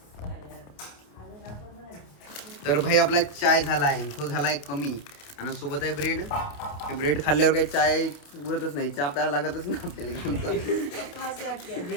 तर भाई आपला चाय झाला आहे. तो झाला आहे कमी आणि सोबत आहे ब्रेड. ब्रेड खाल्ल्यावर काही चाय उरतच नाही. चहा प्यायला लागतच ना आपल्याला.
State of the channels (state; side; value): late; right; 28 ms